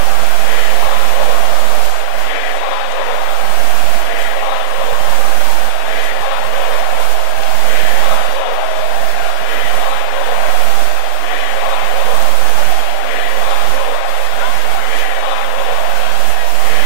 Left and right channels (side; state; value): both; different; correlation 0.00